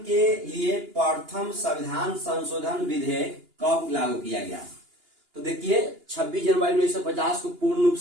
के लिए प्रथम संविधान संशोधन विधेयक कब लागू किया गया? तो देखिए 26 जनवरी 1950 को पूर्ण रूप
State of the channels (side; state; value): left; late; 2.9 ms